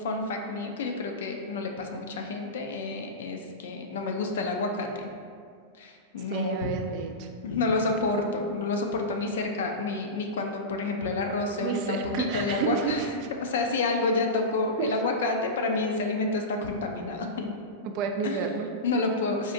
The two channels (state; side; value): normal; both; correlation -0.17